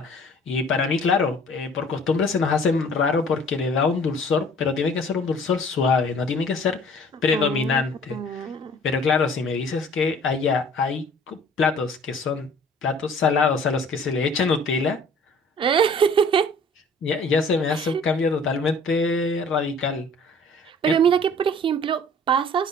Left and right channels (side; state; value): both; normal; correlation 0.51